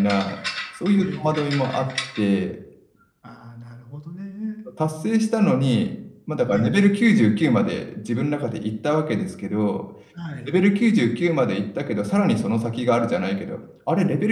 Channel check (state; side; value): identical; both; correlation 1.00